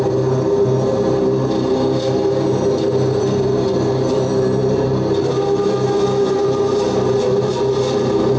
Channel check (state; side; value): identical; both; correlation 1.00